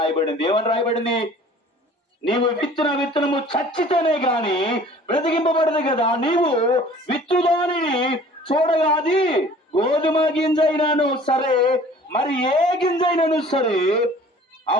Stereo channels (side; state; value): both; normal; correlation 0.49